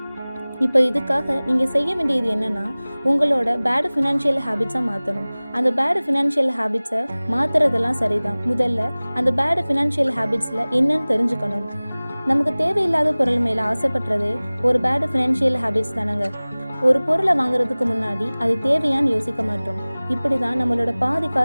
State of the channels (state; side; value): inverted; both; correlation -0.99